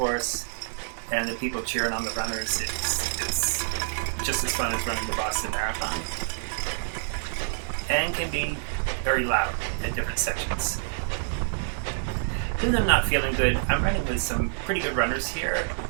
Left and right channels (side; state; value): left; silent; digital silence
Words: and the people cheering on the runners. It's just as fun as running the Boston Marathon. And can be very loud at different sections. Even though I'm not feeling good, I'm running with some pretty good runners here.